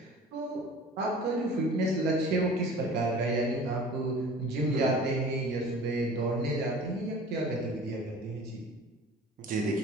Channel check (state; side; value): normal; both; correlation 0.43